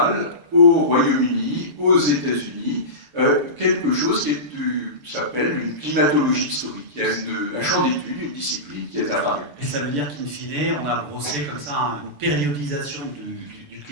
au Royaume-Uni, aux États-Unis, quelque chose qui s'appelle une climatologie historique. Il y a un champ d'études, une discipline qui est apparue. Et ça veut dire qu'in fine, on a brossé comme ça une périodisation du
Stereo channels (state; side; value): late; left; 6.8 ms